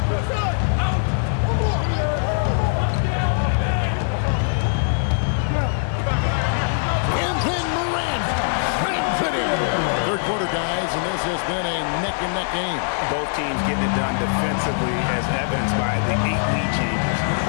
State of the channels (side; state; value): right; silent; digital silence